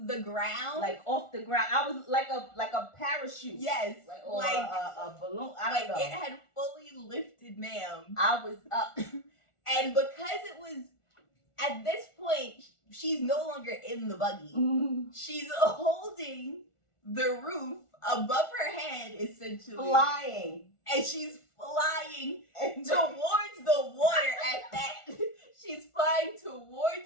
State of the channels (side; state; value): right; late; 1.4 ms